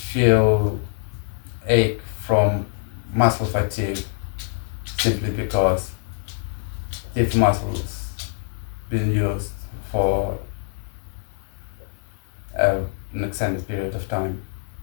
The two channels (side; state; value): right; silent; digital silence